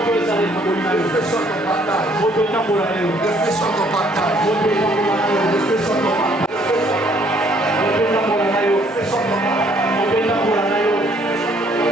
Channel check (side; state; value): both; normal; correlation 0.63